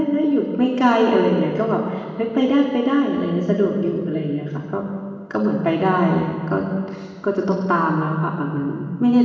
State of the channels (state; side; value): identical; both; correlation 1.00